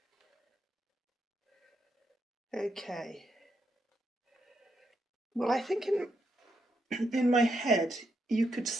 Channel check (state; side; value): normal; both; correlation 0.80